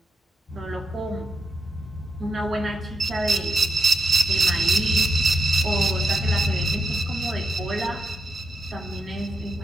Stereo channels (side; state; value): both; normal; correlation 0.84